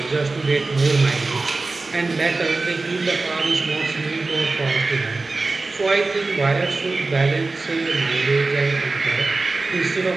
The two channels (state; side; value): quieter; left; 3.5 dB